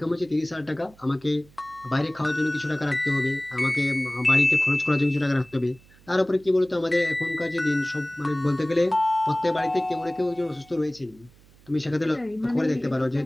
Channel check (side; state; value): right; noise; hum, 27 dB below the sound